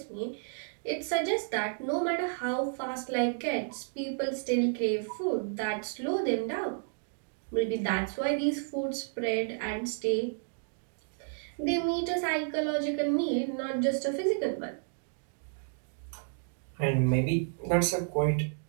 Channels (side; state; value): left; silent; digital silence